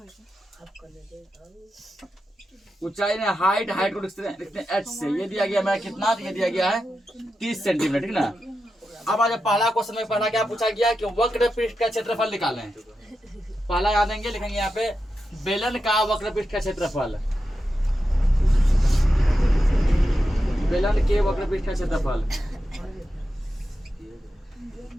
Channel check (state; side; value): normal; both; correlation 0.89